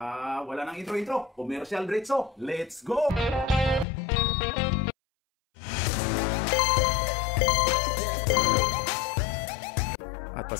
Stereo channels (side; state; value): right; drops out; at 3.9 s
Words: Wala nang intro. Commercial diretso. Let's go! At